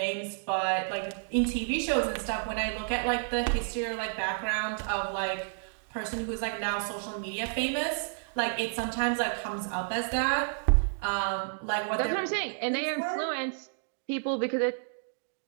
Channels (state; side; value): silent; left; digital silence